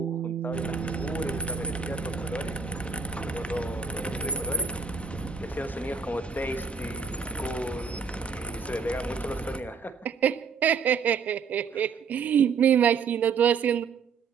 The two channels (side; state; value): left; quieter; 5.7 dB